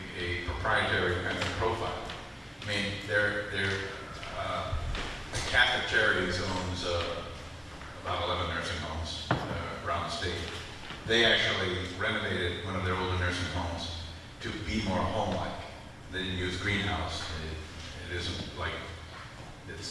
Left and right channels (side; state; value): both; identical; correlation 1.00